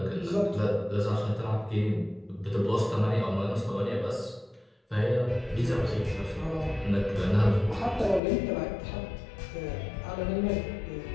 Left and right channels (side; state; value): right; drops out; at 8.2 s